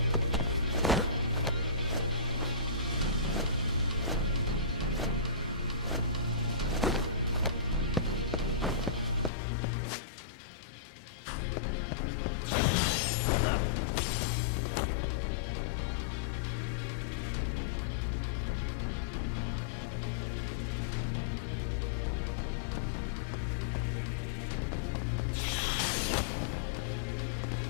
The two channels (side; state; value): right; drops out; at 9.3 s